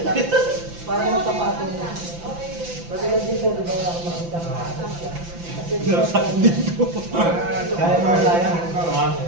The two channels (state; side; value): late; left; 5.9 ms